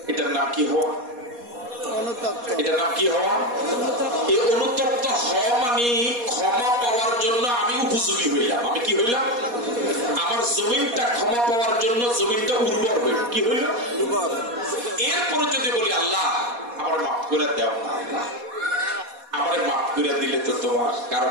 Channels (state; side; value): late; left; 4.2 ms